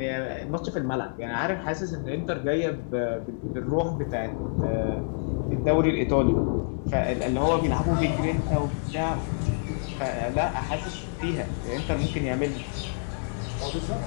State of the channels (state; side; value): silent; right; digital silence